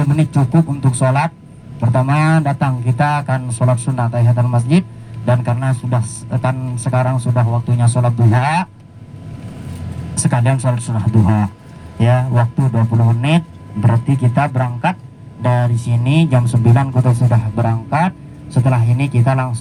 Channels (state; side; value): identical; both; correlation 1.00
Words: menit cukup untuk sholat. Pertama datang kita akan sholat sunnah tahiyatul masjid, dan karena sudah kan sekarang sudah waktunya sholat duha, sekalian sholat sunnah duha ya, waktu 20 menit. Berarti kita berangkat dari sini jam 9 kita sudah berangkat. Setelah ini kita